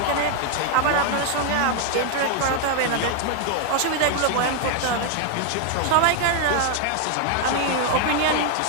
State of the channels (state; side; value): different; both; correlation 0.00